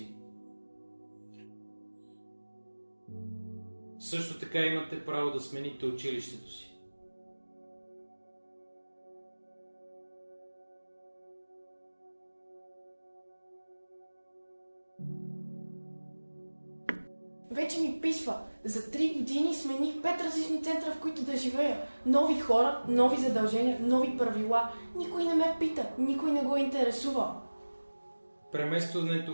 Също така имате право да смените училището си. Вече ми писва. За 3 години смених 5 различни центъра, в които да живея. Нови хора, нови задължения, нови правила. Никой не ме пита, никой не го интересува.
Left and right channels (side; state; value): both; inverted; correlation -1.00